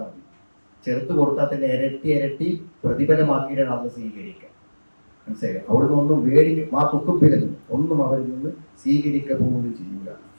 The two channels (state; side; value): inverted; both; correlation -1.00